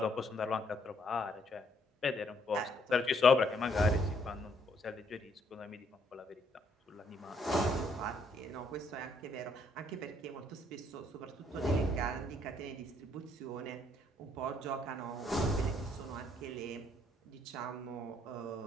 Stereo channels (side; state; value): both; normal; correlation 0.68